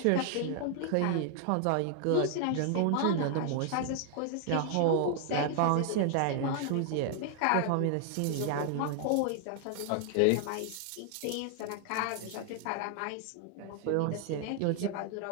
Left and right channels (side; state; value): both; different; correlation 0.00